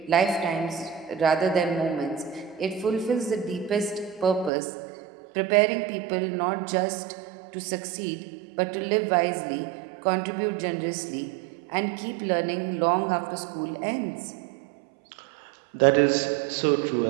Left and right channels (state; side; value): drops out; left; at 4.5 s